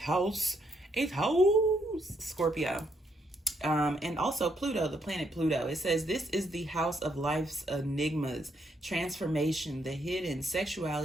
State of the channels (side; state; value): both; normal; correlation 0.74